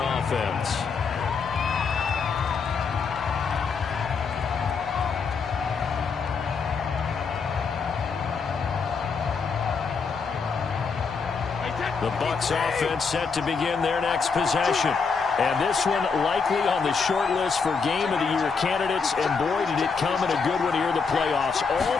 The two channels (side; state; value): right; quieter; 5.3 dB